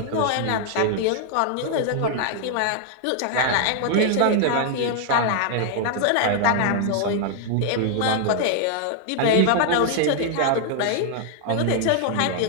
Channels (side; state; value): both; different; correlation 0.00